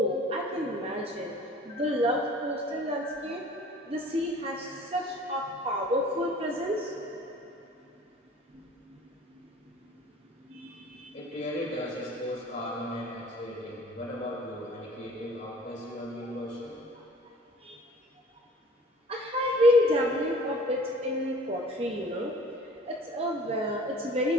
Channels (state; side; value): normal; both; correlation 0.49